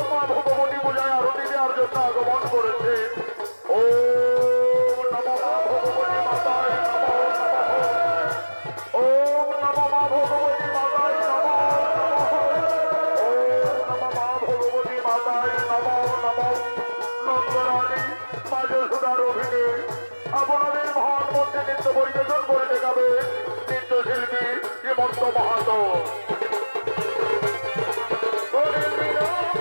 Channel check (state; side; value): inverted; both; correlation -1.00